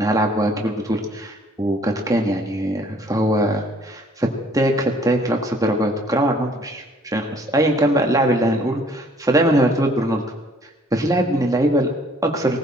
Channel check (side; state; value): both; normal; correlation 0.59